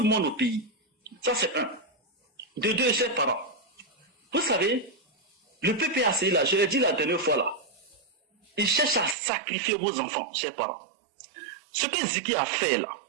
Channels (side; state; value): left; drops out; at 9.2 s